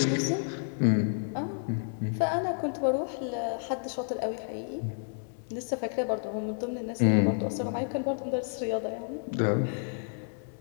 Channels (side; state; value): right; silent; 57 dB below the other